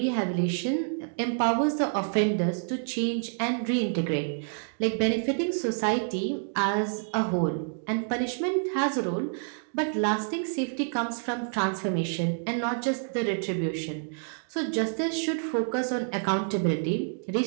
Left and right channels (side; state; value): left; silent; digital silence